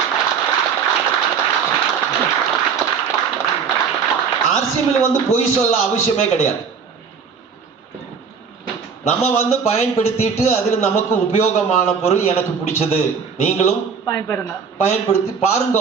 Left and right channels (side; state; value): left; quieter; 6.1 dB